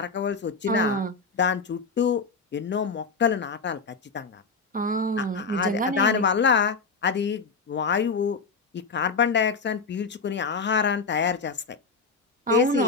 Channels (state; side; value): quieter; right; 4.5 dB